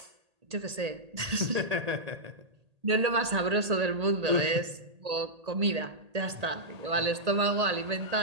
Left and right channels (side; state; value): left; late; 1.8 ms